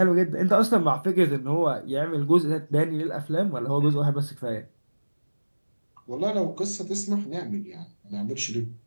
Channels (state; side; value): inverted; both; correlation -1.00